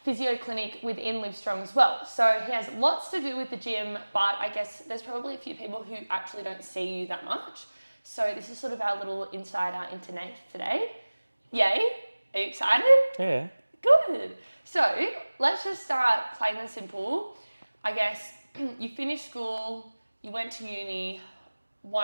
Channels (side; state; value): both; inverted; correlation -1.00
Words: physio clinic within Live Strong as well. So he has lots to do with the gym, but I guess there's probably a few people who actually don't see you that much. So this is sort of our little insider into Nath today. Yay? Are you excited? Yeah. Good. So let's just start plain and simple. I guess you finished school, you went to uni.